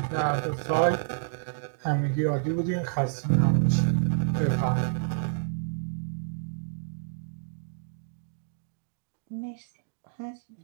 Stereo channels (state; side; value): silent; left; digital silence